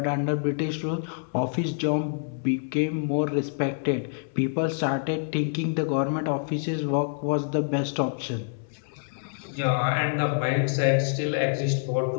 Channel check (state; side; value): silent; right; 60 dB below the other